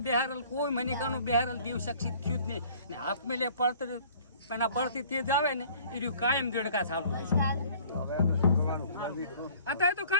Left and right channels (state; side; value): inverted; both; correlation -0.53